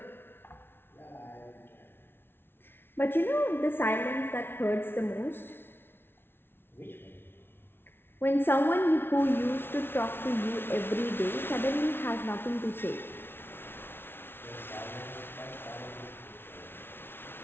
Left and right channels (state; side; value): late; right; 0.11 ms